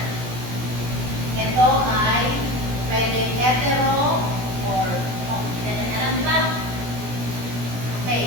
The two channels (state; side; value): late; left; 17 ms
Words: ito ay pwede hetero or hindi natin alam, di ba?